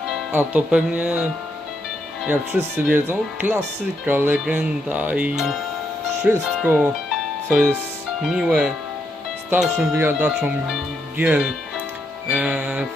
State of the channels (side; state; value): both; normal; correlation 0.79